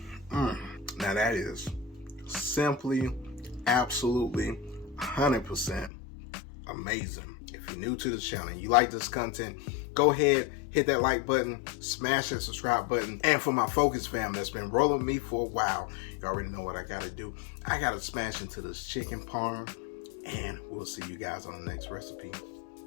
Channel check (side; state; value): right; drops out; at 5.9 s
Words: Now that is simply, absolutely 100% amazing. If you're new to the channel and you like this content, go ahead, hit that like button, smash that subscribe button. And for my Focus fam that's been rolling with me for a while, you already know what I gotta do. I gotta smash into this chicken parm, and we'll see you guys on the next recipe.